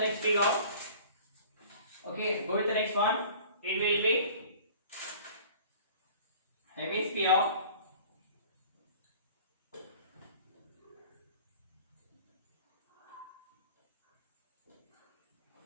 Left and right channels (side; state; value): both; inverted; correlation -0.46